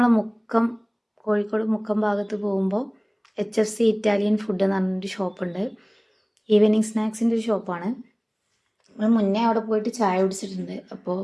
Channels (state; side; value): identical; both; correlation 1.00